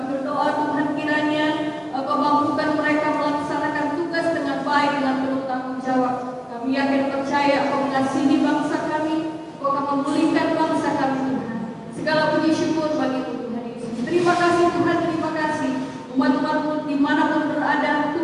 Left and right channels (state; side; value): identical; both; correlation 1.00